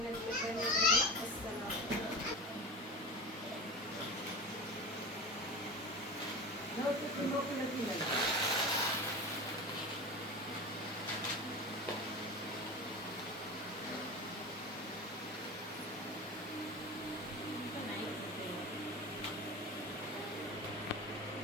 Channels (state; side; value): normal; both; correlation 0.30